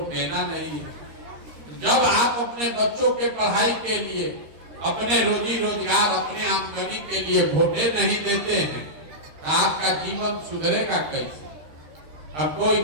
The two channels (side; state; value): left; late; 13 ms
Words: देना नहीं है। जब आप अपने बच्चों के पढ़ाई के लिए, अपने रोजी रोजगार, अपने आमदनी के लिए वोटे नहीं देते हैं तो आपका जीवन सुधरेगा कैसे? अब कोई